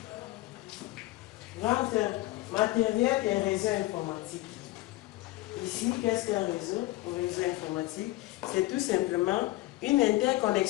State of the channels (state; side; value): quieter; right; 18.4 dB